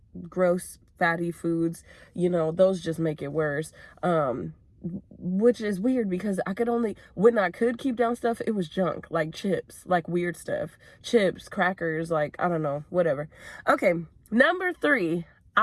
gross fatty foods, those just make it worse. Which is weird, because when I could keep down stuff, it was junk, like chips, like weird stuff, chips, crackers, like, I don't know, whatever. Okay, number 3,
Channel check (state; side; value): identical; both; correlation 1.00